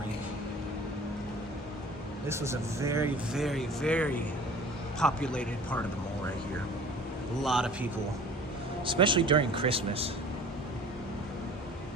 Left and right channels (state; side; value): normal; both; correlation 0.45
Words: This was a very, very, very populated part of the mall right here. A lot of people, especially during Christmas.